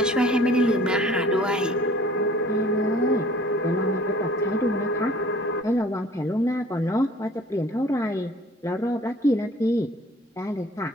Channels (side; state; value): both; normal; correlation 0.51